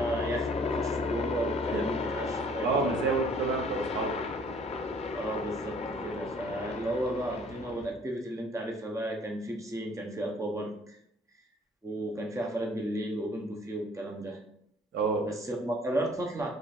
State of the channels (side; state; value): both; normal; correlation 0.56